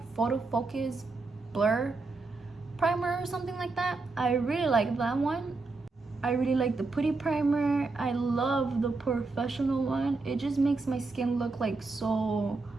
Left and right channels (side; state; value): left; quieter; 3.7 dB